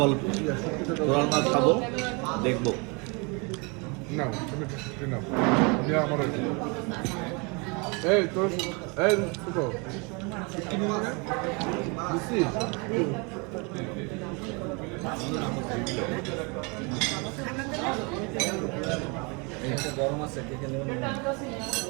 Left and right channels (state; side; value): quieter; left; 31.0 dB